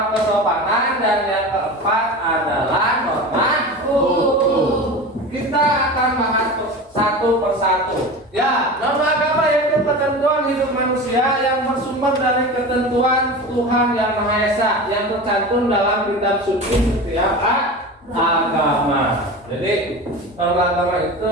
kesopanan, dan yang keempat adalah norma hukum. Kita akan bahas satu persatu. Ya, norma agama yaitu ketentuan hidup manusia yang bersumber dari ketentuan Tuhan Yang Maha Esa yang tercantum dalam kitab suci setiap agama. Jadi norma agama itu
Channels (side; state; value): both; normal; correlation 0.30